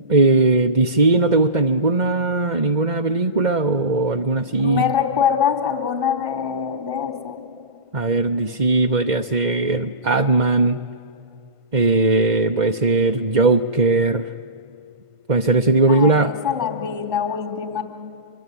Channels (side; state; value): left; late; 1.5 ms